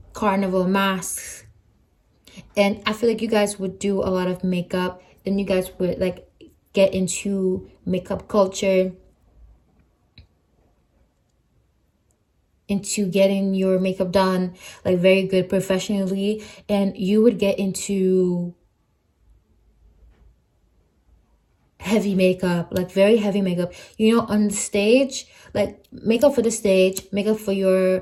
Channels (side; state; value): both; identical; correlation 1.00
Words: carnival masks. And I feel like you guys would do a lot of makeup, and you guys would like get into makeup culture, into getting your makeup done like very good professionally, and you would get into heavy makeup, like very heavy makeup, you know, on the stage, like makeup for the stage, makeup for